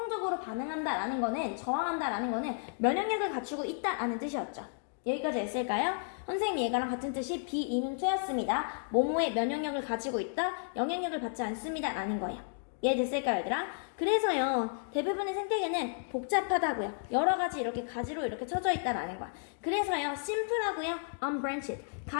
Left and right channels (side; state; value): right; silent; digital silence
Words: 반응한다라는 거는, 저항한다라는 거는 면역력을 갖추고 있다라는 뜻이었죠. 여기까지 했을까요? 선생님이 얘가랑 같은 뜻이 비이민투였습니다. 모모의 면역력을 가지고 있다, 영향력을 받지 않습니다 라는 거예요. 이해됐을까요, 얘들아? 그래서요, 대부분의 생태계는 복잡하다고요. 여러 가지 이렇게 가지로 이렇게 쳐져 있다라는 거야. 그래서요, 심플하고요, unbranched,